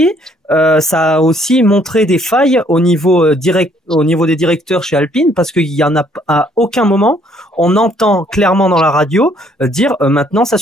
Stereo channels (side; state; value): both; normal; correlation 0.64